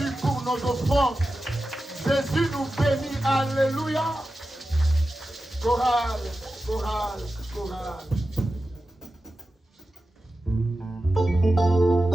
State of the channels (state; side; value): normal; both; correlation 0.92